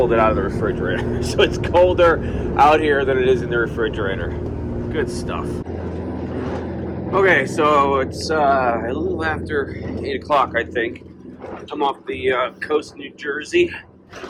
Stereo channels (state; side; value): identical; both; correlation 1.00